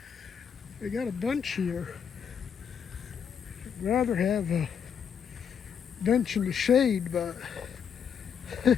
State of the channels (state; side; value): quieter; right; 7.5 dB